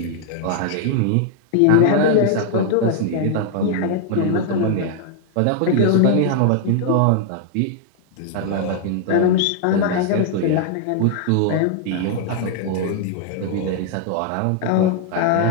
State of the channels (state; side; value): different; both; correlation 0.00